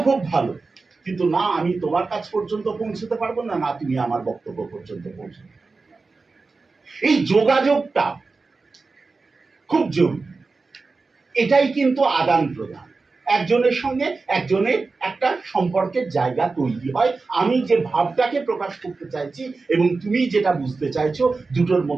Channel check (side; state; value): left; quieter; 4.0 dB